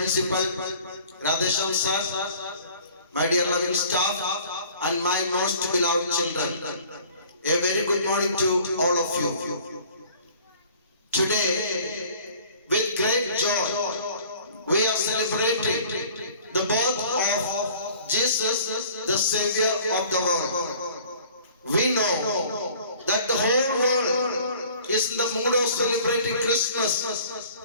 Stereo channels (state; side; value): inverted; both; correlation -0.50